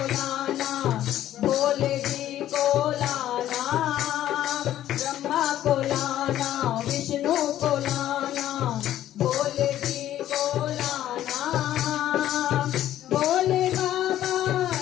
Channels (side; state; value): right; quieter; 12.5 dB